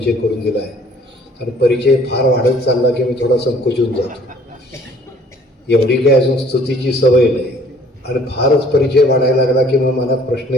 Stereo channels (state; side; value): normal; both; correlation 0.57